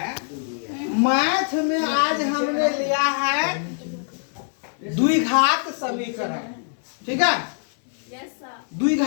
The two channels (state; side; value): silent; right; 58 dB below the other